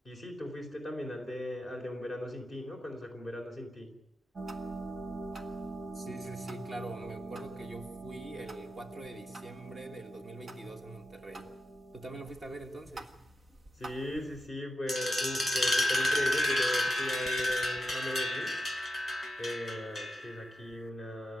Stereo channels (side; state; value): both; normal; correlation 0.90